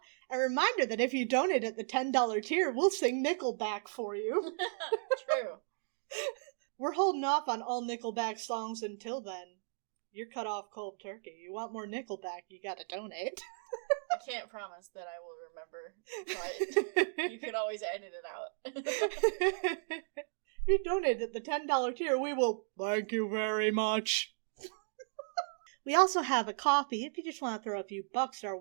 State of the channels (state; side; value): silent; left; digital silence